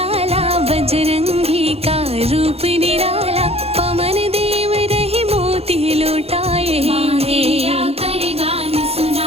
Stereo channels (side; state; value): left; late; 0.29 ms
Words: बजरंगी का रूप निराला, पवन देव रहे मोती लौटाए, मांगिया कर गान